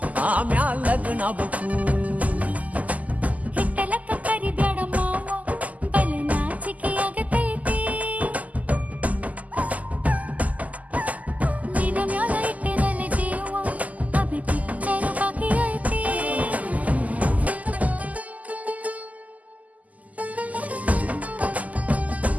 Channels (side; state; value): left; late; 0.076 ms